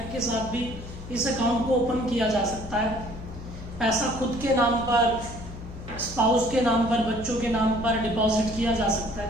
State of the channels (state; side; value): noise; left; hum, 12 dB below the sound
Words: के साथ भी इस अकाउंट को ओपन किया जा सकता है। पैसा खुद के नाम पर, स्पाउस के नाम पर, बच्चों के नाम पर डिपॉजिट किया जा सकता